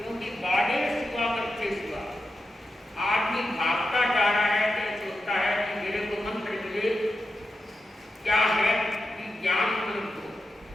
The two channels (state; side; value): normal; both; correlation 0.89